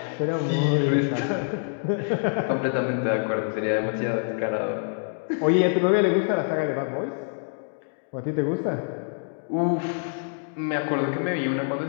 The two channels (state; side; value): silent; right; 61 dB below the other